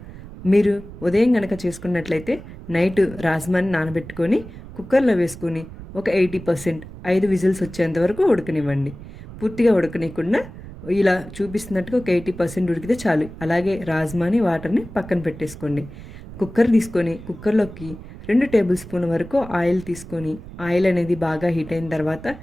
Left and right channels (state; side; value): noise; right; rumble, 14 dB below the sound